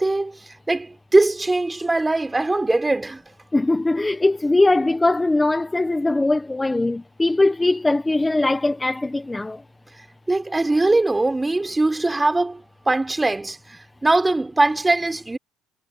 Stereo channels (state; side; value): normal; both; correlation 0.97